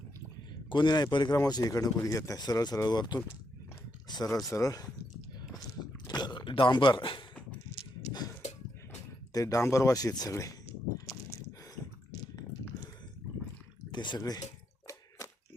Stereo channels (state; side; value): normal; both; correlation 0.79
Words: कोणी नाही परिक्रमाची इकडनं कोणी घेत नाही. सरळ सरळ वरतून सरळ सरळ डांबर, ते डांबरवाशी आहेत सगळे. ते सगळे